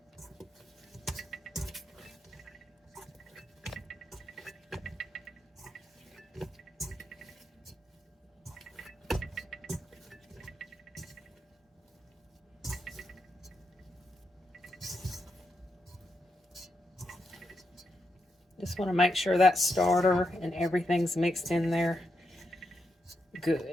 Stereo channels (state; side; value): normal; both; correlation 0.83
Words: Just want to make sure that starter and everything's mixed in there